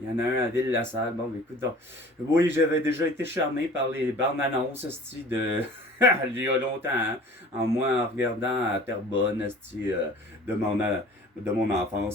y en a un à Ville-la-Salle, bon, écoute, donc, oui, j'avais déjà été charmé par les bandes annonces, de, il y a longtemps, hein, en regardant à Terrebonne, de mon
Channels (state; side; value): normal; both; correlation 0.46